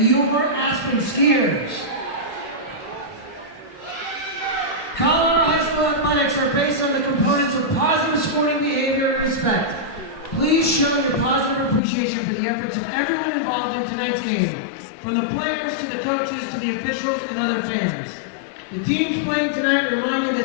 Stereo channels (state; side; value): drops out; right; at 11.8 s